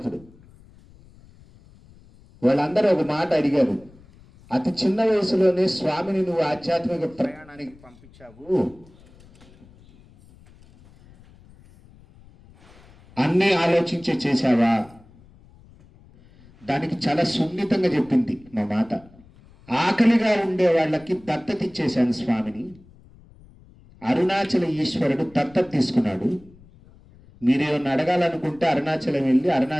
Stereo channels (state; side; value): noise; left; rumble, 25 dB below the sound